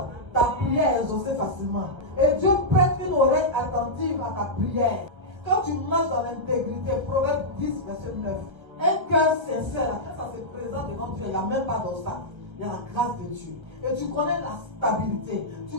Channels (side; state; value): left; late; 1.3 ms